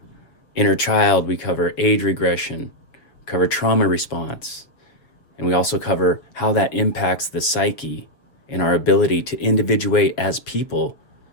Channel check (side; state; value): right; late; 7.2 ms